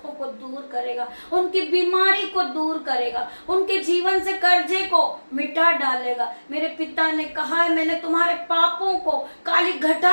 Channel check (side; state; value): both; inverted; correlation -1.00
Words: को दूर करेगा, उनकी बीमारी को दूर करेगा, उनके जीवन से कर्जे को मिटा डालेगा। मेरे पिता ने कहा है, मैंने तुम्हारे पापों को काली